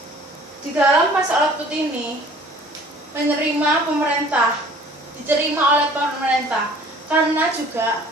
di dalam pasar output ini diterima oleh pemerintah karena juga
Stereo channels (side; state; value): both; normal; correlation 0.50